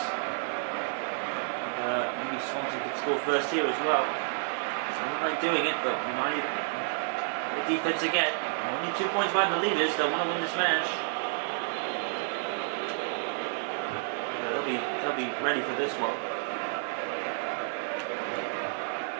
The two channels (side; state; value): left; silent; 58 dB below the other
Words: And, maybe Swansea could score first here as well. So I don't like doing it, but United, the defence again. Only 2 points behind the leaders. They want to win this match. They'll be ready for this one.